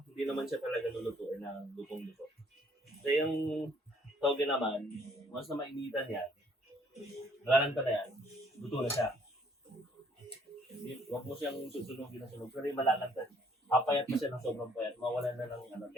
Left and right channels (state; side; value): normal; both; correlation 0.63